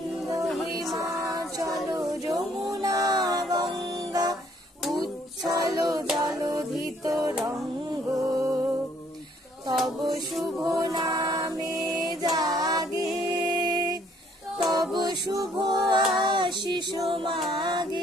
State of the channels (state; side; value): normal; both; correlation 0.64